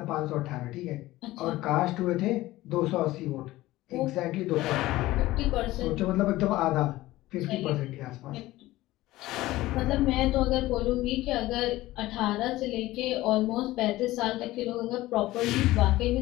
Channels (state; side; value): quieter; right; 17.2 dB